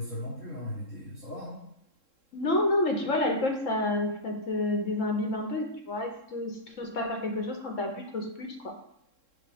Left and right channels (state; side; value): late; right; 3.7 ms